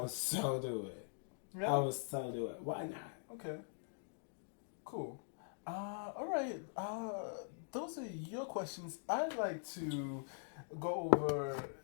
so do it. Yeah. I would so do it. Why not? Okay. Cool. All right. Those are your questions. I'd like to go over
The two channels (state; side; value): silent; right; digital silence